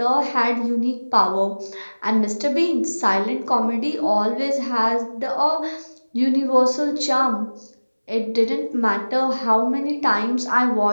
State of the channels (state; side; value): inverted; both; correlation -1.00